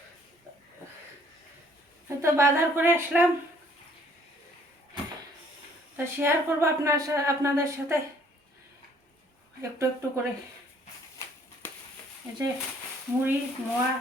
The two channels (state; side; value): normal; both; correlation 0.61